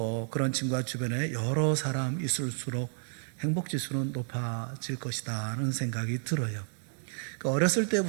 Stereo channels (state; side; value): silent; left; 57 dB below the other